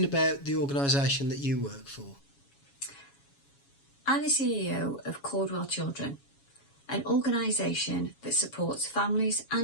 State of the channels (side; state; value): right; late; 7.2 ms